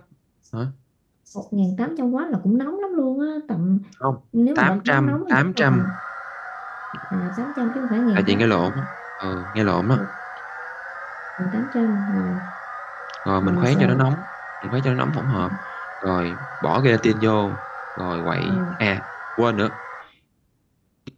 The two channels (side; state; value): both; identical; correlation 1.00